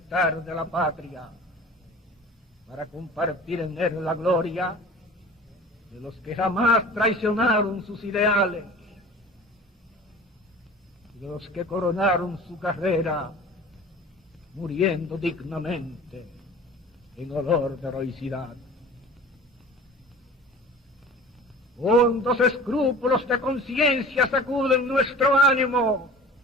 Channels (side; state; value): both; normal; correlation 0.41